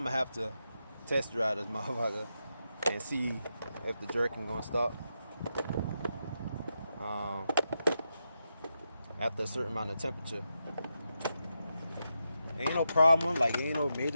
gonna have to test drive this motherfucker and see if the jerking gonna stop. After a certain amount of temperature. Ain't no problem, like ain't no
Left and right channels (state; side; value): inverted; both; correlation -0.86